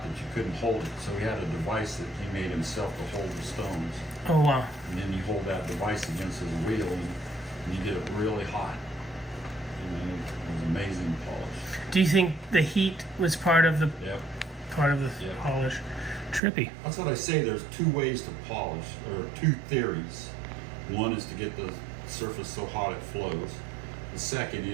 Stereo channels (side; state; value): left; drops out; at 16.4 s